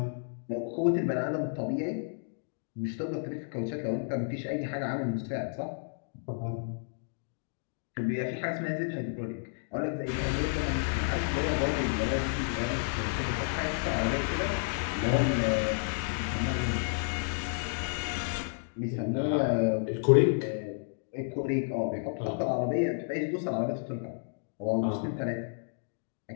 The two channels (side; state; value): right; silent; digital silence